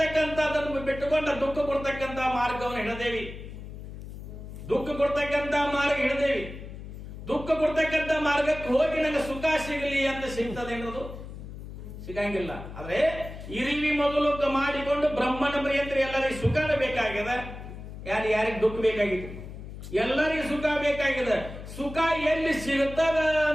ಬಿಟ್ಟುಕೊಂಡ ದುಃಖ ಕೊಡ್ತಕ್ಕಂಥ ಮಾರ್ಗವನ್ನು ಹಿಡದೇವಿ. ದುಃಖ ಕೊಡ್ತಕ್ಕಂಥ ಮಾರ್ಗ ಹಿಡದೇವಿ. ದುಃಖ ಕೊಡ್ತಕ್ಕಂಥ ಮಾರ್ಗಕ್ಕೆ ಹೋಗಿ ನನಗೆ ಸುಖ ಸಿಗಲಿ ಅಂತ ಸಿಗ್ತದೆ ಅನ್ನೋದು ಸಿಗಂಗಿಲ್ಲ. ಆದ್ರೆ ಇರಿವಿ ಮೊದಲು ಮಾಡಿಕೊಂಡು ಬ್ರಹ್ಮನ ಪ್ರಿಯಂತ್ರ ಎಲ್ಲರಿಗೂ ಸುಖನ ಬೇಕಾಗಿದೆ. ಯಾರಿಗೆ ದುಃಖ ಬೇಕಾಗಿದೆ, ಎಲ್ಲರಿಗೂ ಸುಖ ಬೇಕಾಗಿದೆ. ಸುಖ ಎಲ್ಲಿ ಸಿಗುತ್ತದ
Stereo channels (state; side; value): noise; left; hum, 11 dB below the sound